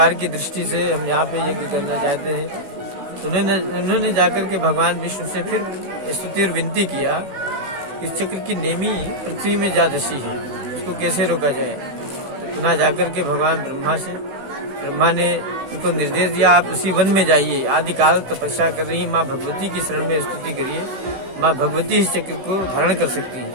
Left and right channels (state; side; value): late; left; 16 ms